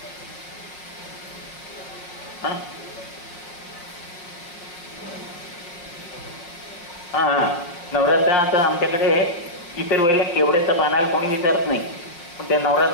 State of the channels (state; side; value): late; right; 5.7 ms